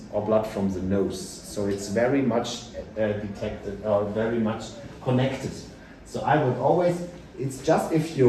or blood from the nose. So it's very much detected or very much connected. So I would always, it's just if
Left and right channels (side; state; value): both; identical; correlation 1.00